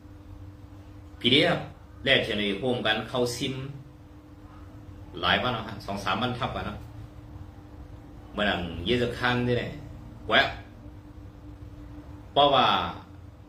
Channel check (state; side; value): identical; both; correlation 1.00